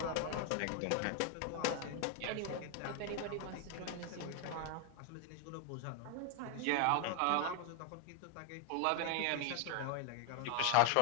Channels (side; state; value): both; different; correlation 0.01